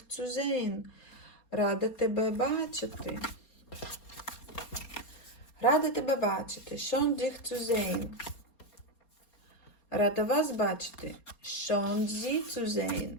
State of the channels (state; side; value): late; right; 4.3 ms